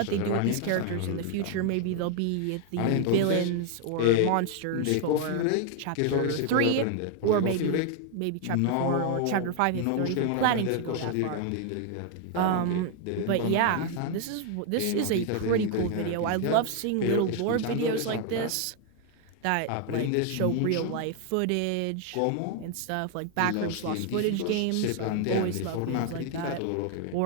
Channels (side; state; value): both; different; correlation 0.00